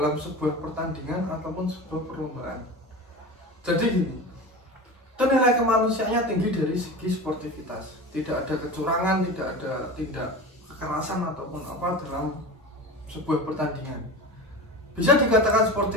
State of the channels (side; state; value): both; normal; correlation 0.30